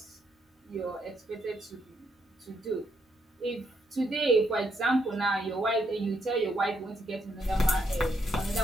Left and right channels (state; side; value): normal; both; correlation 0.76